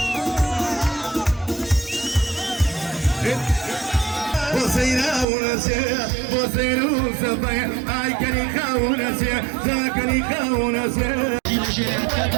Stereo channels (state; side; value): drops out; left; at 5.2 s